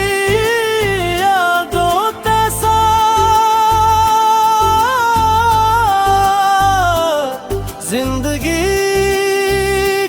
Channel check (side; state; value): both; identical; correlation 1.00